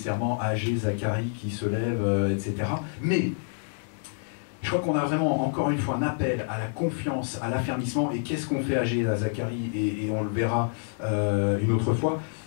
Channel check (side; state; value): right; silent; digital silence